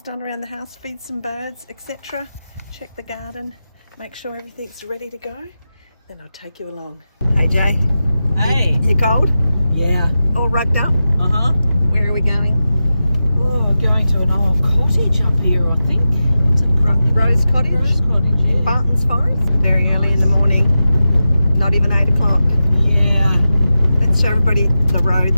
done around the house, feed some birds, etc. Check the garden, make sure everything's ready to go. Then I'll take you along. Hey Jay. Hey. You cold? Yeah. All rugged up? Uh-huh. Where are we going? Oh, we're going to an old cottage up here, I think. What's it? Rose Cottage? Rose Cottage, yeah. Bartons Forest? Very early in the morning. Not even 8 o'clock. Yeah. Let's show everybody the road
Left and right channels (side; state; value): both; inverted; correlation -0.92